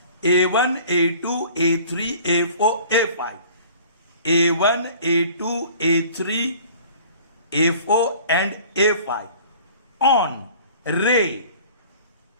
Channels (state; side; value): inverted; both; correlation -0.48